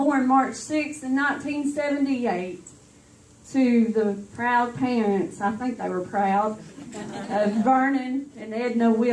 March 6th in 1978. To the proud parents, I think they were proud, of Vernon and Edna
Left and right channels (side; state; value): both; identical; correlation 1.00